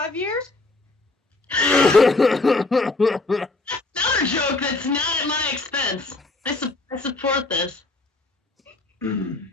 years? Another joke that's not at my expense. I support this.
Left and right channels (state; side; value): quieter; right; 3.2 dB